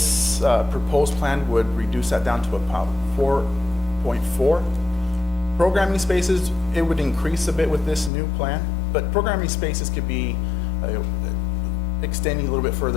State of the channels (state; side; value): drops out; right; at 8.1 s